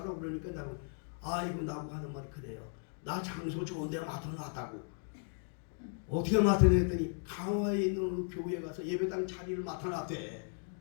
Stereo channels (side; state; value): right; silent; 54 dB below the other